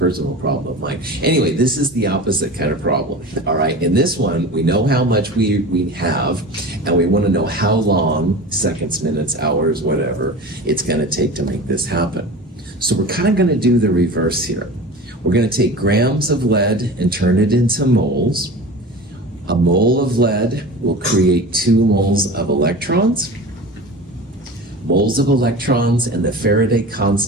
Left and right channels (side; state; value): both; normal; correlation 0.34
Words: problem of mine. Anyway, this is the opposite kind of problem. All right, in this one, we know how much we have, and we want to know how long, seconds, minutes, hours, whatever, it's going to take to make this happen. So we're kind of going to do the reverse here. We're going to take grams of lead and turn it into moles. A mole of lead will create 2 moles of electrons. Moles of electrons and the Faraday